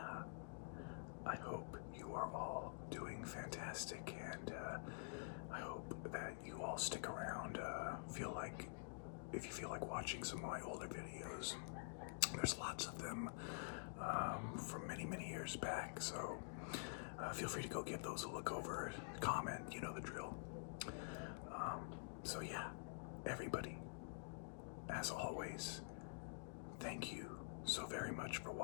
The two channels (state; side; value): silent; right; digital silence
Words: I hope you are all doing fantastic, and I hope that you all stick around. If you feel like watching some of my older videos, there's lots of them from many years back, so feel free to go give those a look over, comment, you know the drill. So yeah, everybody, as always, thank you so very much for